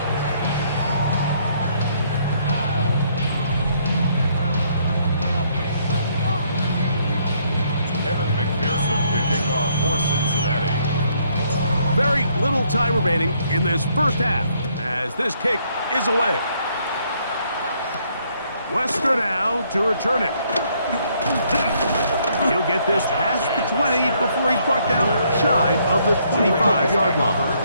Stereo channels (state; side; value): inverted; both; correlation -0.68